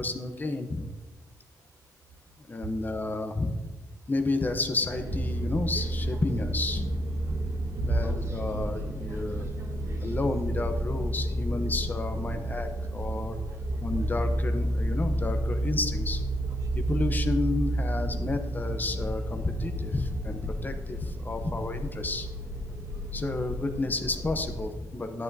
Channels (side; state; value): both; normal; correlation 0.74